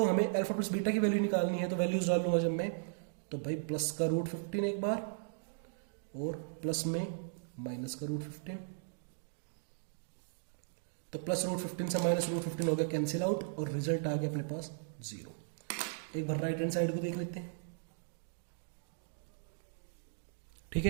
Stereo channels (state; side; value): silent; left; digital silence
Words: हमें अल्फा प्लस बीटा की वैल्यू निकालनी है, तो वैल्यूज डाल लूंगा जब मैं, तो भाई प्लस का √15 एक बार, और प्लस में माइनस का √15, तो प्लस √15 से माइनस √15 हो गया कैंसिल आउट, और रिजल्ट आ गया अपने पास 0। एक बार राइट हैंड साइड को देख लेते हैं, ठीक